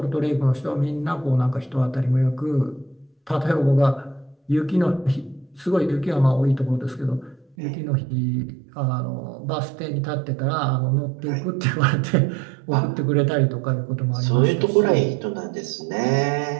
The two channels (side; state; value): left; drops out; at 7.6 s